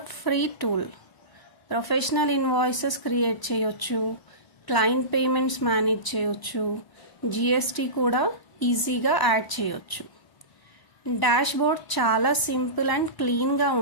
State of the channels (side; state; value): right; late; 1.0 ms